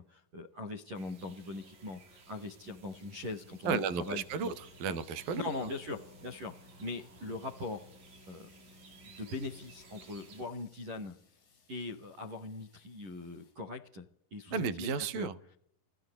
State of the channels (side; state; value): left; late; 12 ms